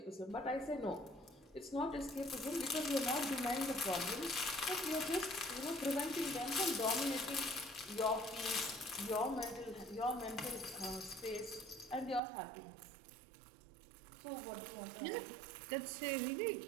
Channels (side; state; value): left; drops out; at 12.2 s